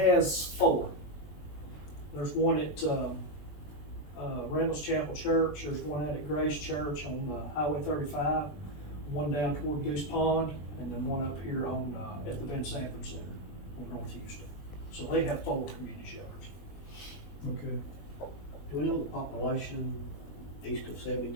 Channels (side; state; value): right; late; 20 ms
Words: 4. There's one at, Randall's Chapel Church, there's one out at Grace Church on, Highway 35, one down toward Goose Pond, and then one up here on, at the Ben Sanford Center in North Houston. So they have 4 community shelters. Okay. Do we know the population east of